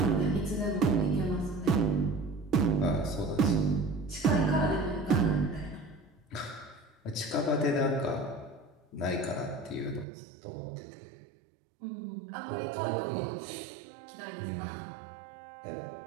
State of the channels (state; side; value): drops out; left; at 10.1 s